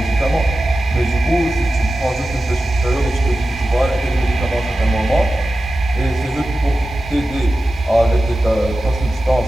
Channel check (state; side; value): normal; both; correlation 0.94